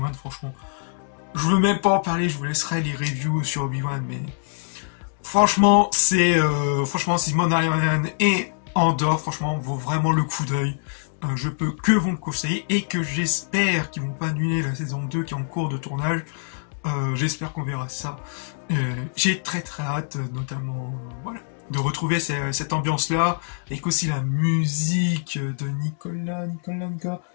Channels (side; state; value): right; silent; digital silence